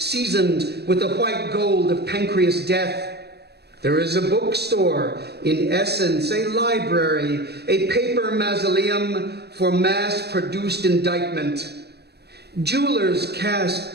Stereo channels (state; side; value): late; left; 0.48 ms